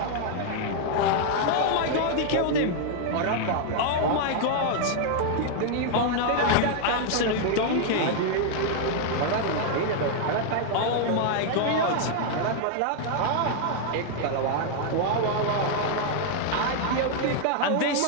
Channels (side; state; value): both; different; correlation 0.00